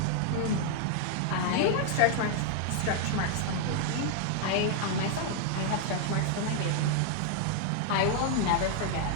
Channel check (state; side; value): different; both; correlation 0.00